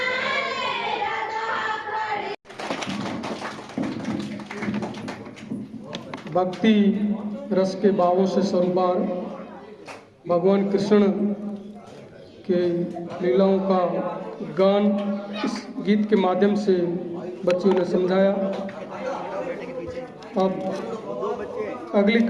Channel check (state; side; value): identical; both; correlation 1.00